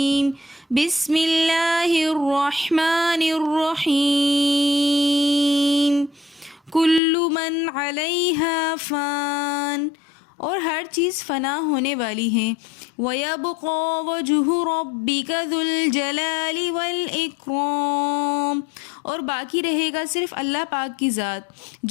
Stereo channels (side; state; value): right; drops out; at 7.0 s